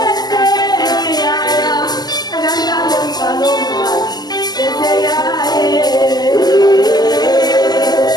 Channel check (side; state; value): right; late; 0.19 ms